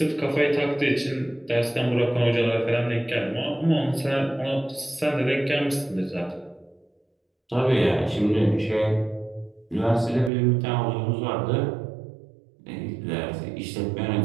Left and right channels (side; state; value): left; drops out; at 10.3 s